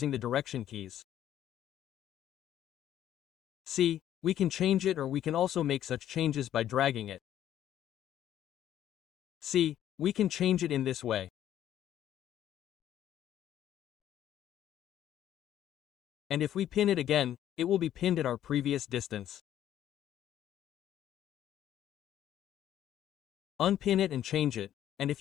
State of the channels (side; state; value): right; quieter; 11.5 dB